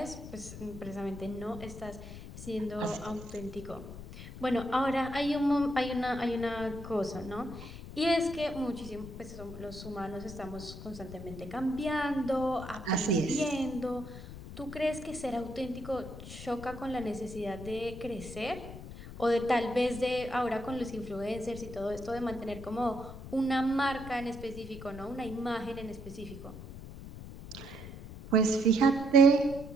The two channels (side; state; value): left; noise; rumble, 12 dB below the sound